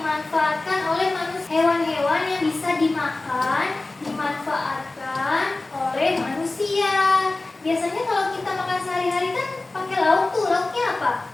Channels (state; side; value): quieter; right; 3.1 dB